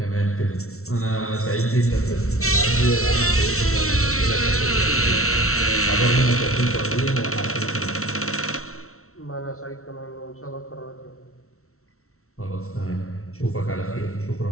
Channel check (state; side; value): late; right; 0.63 ms